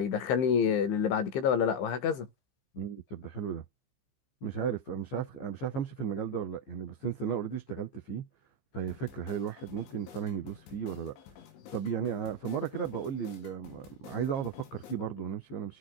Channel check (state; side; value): late; right; 15 ms